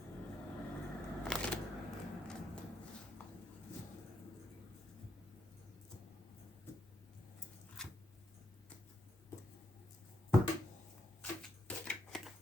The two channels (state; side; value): normal; both; correlation 0.79